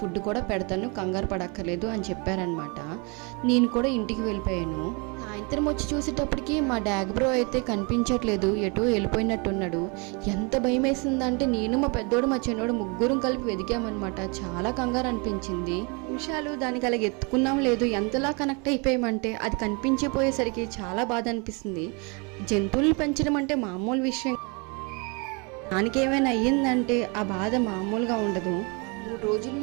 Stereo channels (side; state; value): left; quieter; 31.8 dB